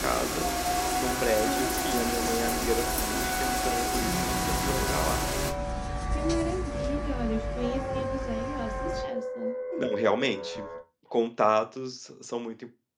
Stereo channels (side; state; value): both; identical; correlation 1.00